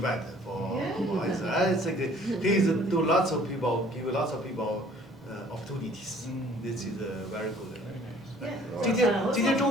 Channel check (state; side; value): normal; both; correlation 0.55